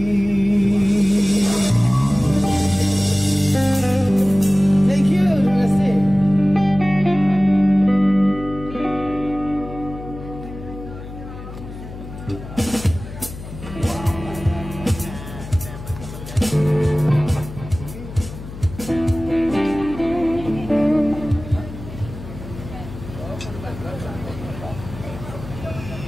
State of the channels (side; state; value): left; noise; hum, 12 dB below the sound